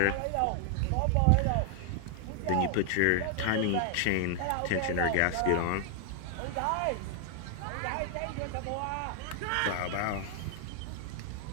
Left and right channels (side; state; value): both; different; correlation 0.00